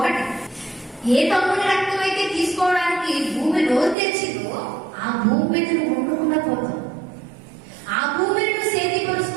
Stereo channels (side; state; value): left; drops out; at 4.0 s